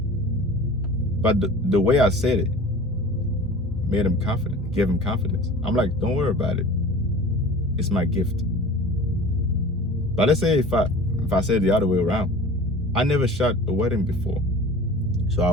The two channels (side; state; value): both; normal; correlation 0.40